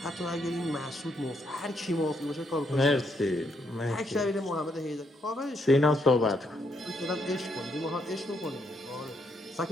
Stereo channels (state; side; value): normal; both; correlation 0.76